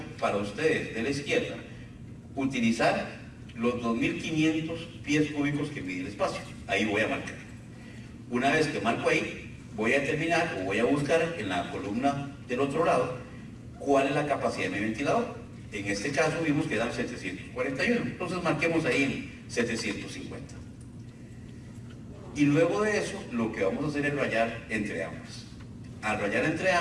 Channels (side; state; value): both; identical; correlation 1.00